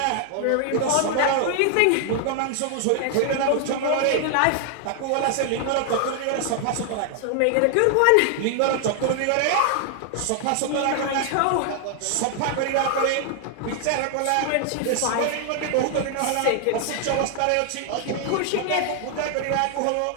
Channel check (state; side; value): different; both; correlation 0.00